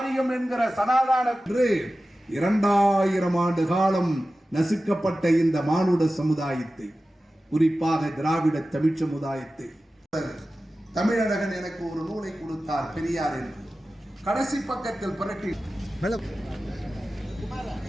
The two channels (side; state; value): both; normal; correlation 0.95